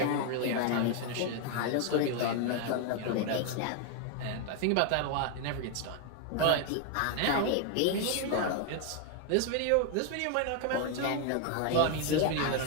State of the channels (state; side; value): different; both; correlation 0.01